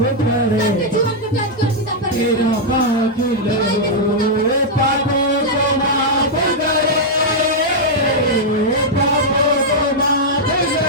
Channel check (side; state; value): both; normal; correlation -0.04